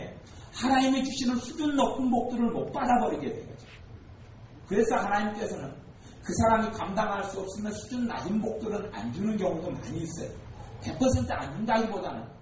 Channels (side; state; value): both; identical; correlation 1.00